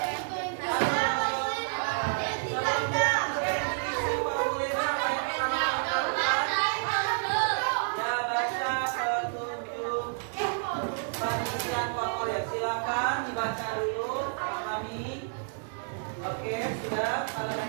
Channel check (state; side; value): silent; left; 58 dB below the other